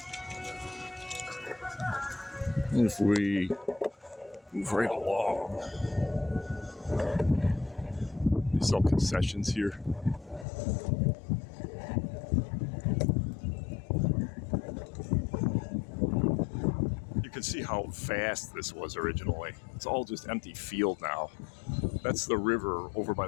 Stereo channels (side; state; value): right; drops out; at 10.5 s